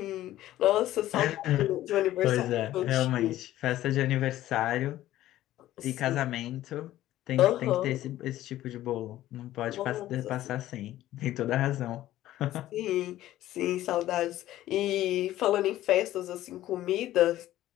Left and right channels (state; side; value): quieter; right; 14.2 dB